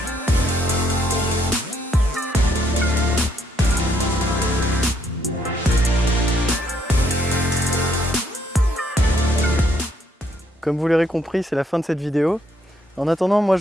Comme vous l'aurez compris, c'est la fin de cette vidéo. En attendant, moi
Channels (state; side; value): normal; both; correlation 0.71